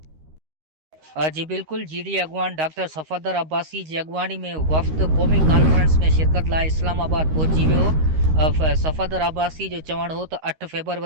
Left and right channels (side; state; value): left; late; 13 ms